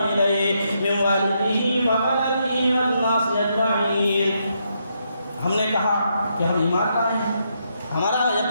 من والدہ وولدہ والناس اجمعین۔ ہم نے کہا کہ ہم ایمان لائے ہیں، ہمارا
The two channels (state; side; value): inverted; both; correlation -0.78